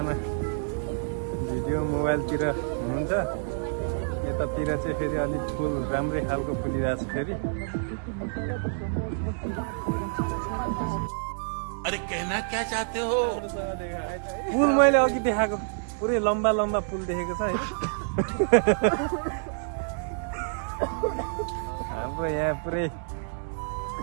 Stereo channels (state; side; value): silent; left; digital silence